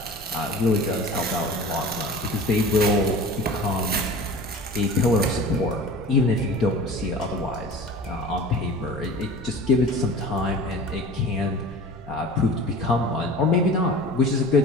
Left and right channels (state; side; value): normal; both; correlation 0.38